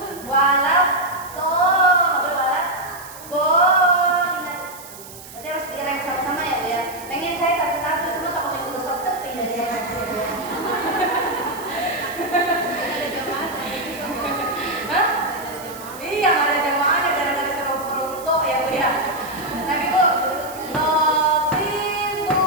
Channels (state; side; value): noise; right; hiss, 16 dB below the sound